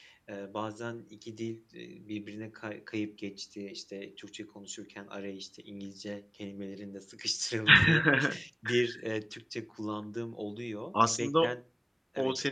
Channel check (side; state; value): both; identical; correlation 1.00